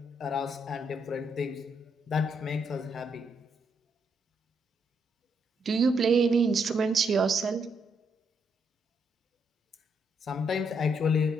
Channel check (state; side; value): normal; both; correlation 0.76